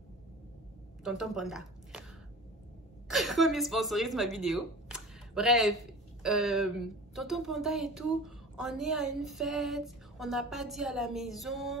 Tonton Panda. Comme il sponsorise ma vidéo. Bref, Tonton Panda et tout, on est à une fête, on n'a pas dit à la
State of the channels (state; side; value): normal; both; correlation 0.38